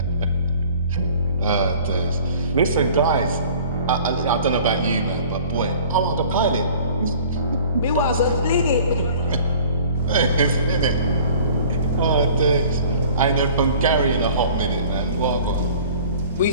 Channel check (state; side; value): inverted; both; correlation -0.48